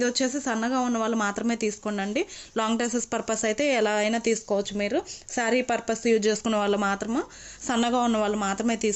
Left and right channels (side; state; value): both; identical; correlation 1.00